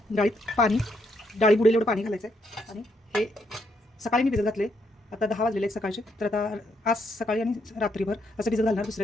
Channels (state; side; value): normal; both; correlation 0.75